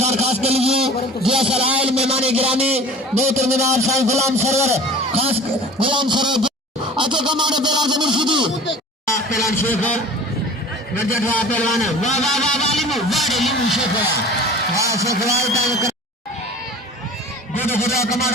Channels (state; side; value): normal; both; correlation 0.42